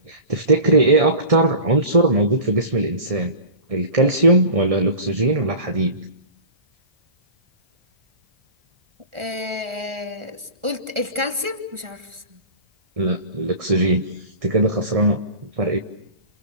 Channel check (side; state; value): left; late; 1.4 ms